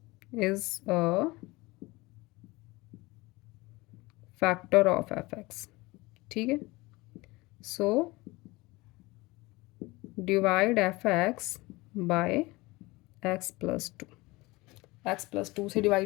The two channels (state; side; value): quieter; right; 22.3 dB